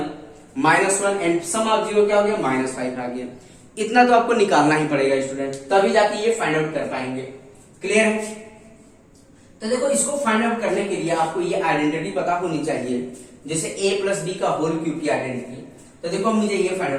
-1 एंड सम ऑफ जीरो क्या हो गया, -5 आ गया। इतना तो आपको निकालना ही पड़ेगा स्टूडेंट, तभी जाके ये फाइंड आउट कर पाएंगे, क्लियर है। तो देखो इसको फाइंड आउट करने के लिए आपको ये आइडेंटिटी पता होनी चाहिए, जैसे a + b का होल क्यूब की आइडेंटिटी। तो देखो मुझे ये फाइंड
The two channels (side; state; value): both; identical; correlation 1.00